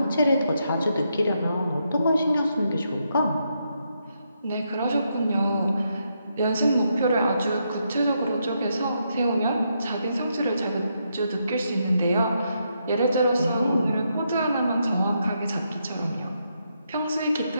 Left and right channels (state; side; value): inverted; both; correlation -0.80